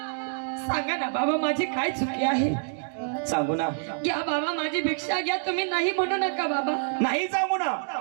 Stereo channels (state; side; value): silent; left; digital silence